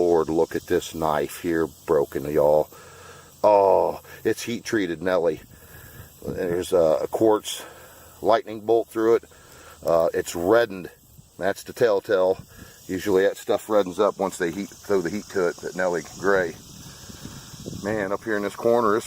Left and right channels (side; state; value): both; identical; correlation 1.00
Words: Look at this knife here, broken, y'all. Oh, it's heat treated, Nelly. There's a quartz lightning bolt through it. It's reddened. That's the telltale. Usually that stuff reddens up once they throw the heat to it. That Nelly gray. Man, up here in this corner,